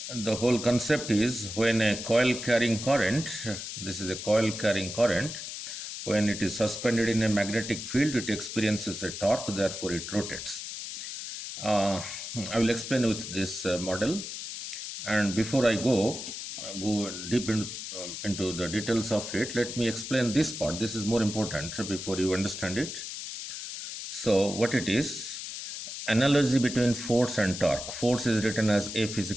the whole concept is when a coil carrying current, this is a coil carrying current, when it is suspended in a magnetic field, it experiences a torque, therefore it rotates. Uh, I will explain with this model. And before I go deep into the details of it, let me explain this part. This is more important before you understand it. So what it is, analogy between force and torque. Force is written as F is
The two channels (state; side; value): noise; left; hiss, 7 dB below the sound